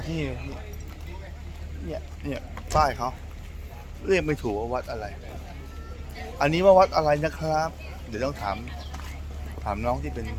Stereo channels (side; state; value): both; identical; correlation 1.00